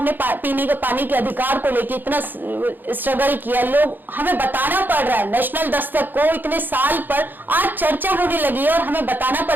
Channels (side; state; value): left; late; 0.089 ms